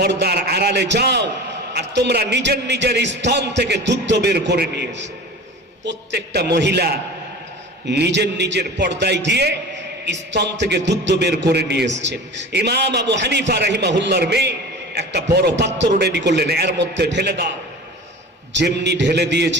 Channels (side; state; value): both; normal; correlation 0.36